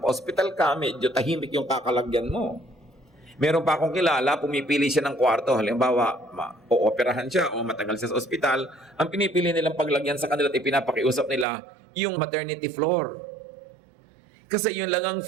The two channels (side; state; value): left; drops out; at 11.5 s